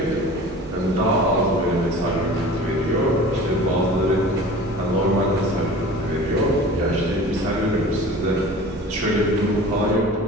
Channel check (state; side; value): normal; both; correlation 0.40